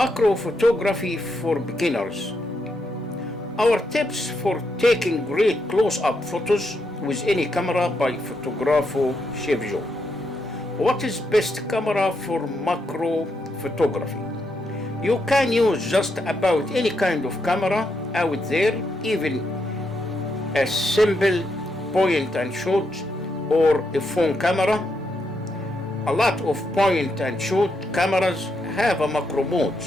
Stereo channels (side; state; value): both; normal; correlation 0.80